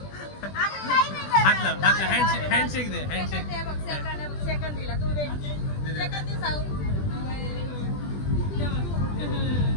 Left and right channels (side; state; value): right; late; 20 ms